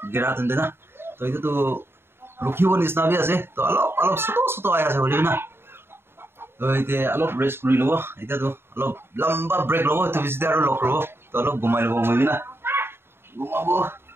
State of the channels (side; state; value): left; late; 0.11 ms